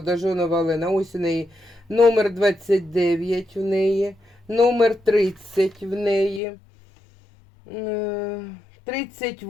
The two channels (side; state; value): right; drops out; at 6.4 s